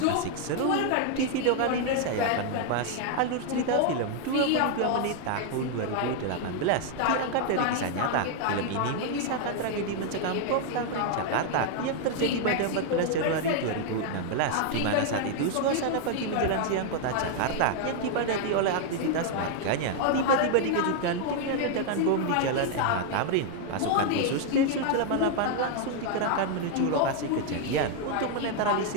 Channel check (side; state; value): both; different; correlation 0.00